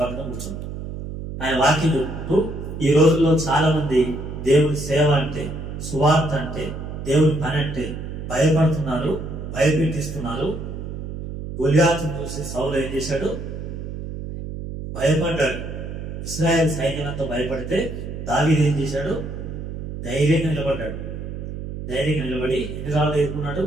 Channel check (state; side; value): noise; right; hum, 7 dB below the sound